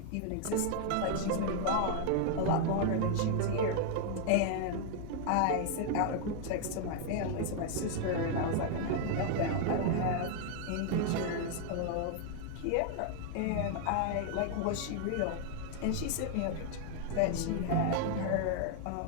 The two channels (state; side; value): different; both; correlation 0.00